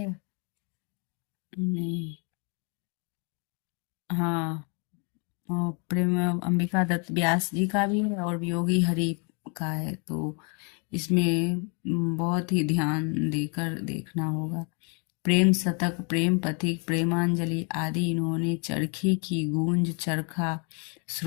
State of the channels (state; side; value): quieter; right; 36.7 dB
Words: नहीं, हाँ, और प्रेम अंबिका दत्त व्यास जी का भी है और वियोगी हरि का है। तो इसमें बहुत ही ध्यान देकर देखना होगा। प्रेम शतक, प्रेम पथिक, प्रेमांजलि आदि इन्होंने चरखी की गूंज, चरखा